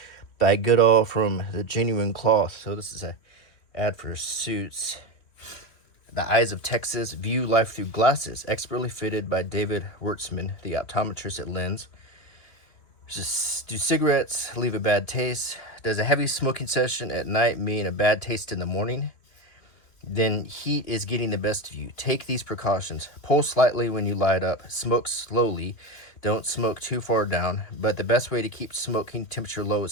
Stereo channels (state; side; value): late; right; 3.1 ms